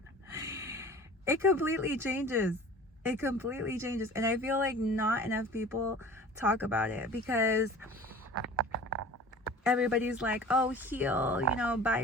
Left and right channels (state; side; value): normal; both; correlation 0.41